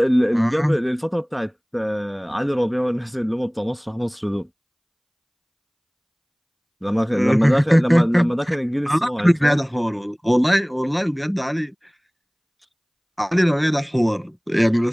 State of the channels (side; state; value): both; identical; correlation 1.00